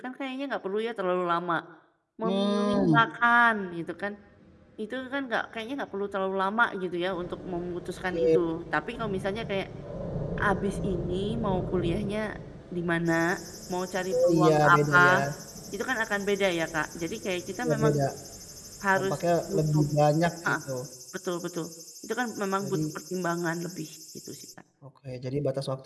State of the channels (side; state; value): both; identical; correlation 1.00